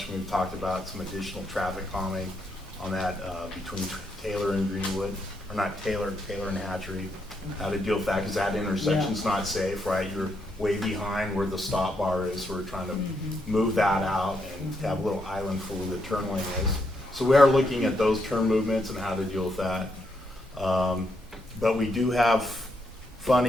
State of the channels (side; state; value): both; normal; correlation 0.79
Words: We've talked about some additional traffic calming on that, between Taylor and Greenwood, or not Taylor and Hatchery. How to deal with that, cause that intersection's not safe, right? You're way behind where the stop bar is, so we're trying to move that out and have a little island for where the turn lane is. So we are looking at those turn movements and how to deal with that. But we do have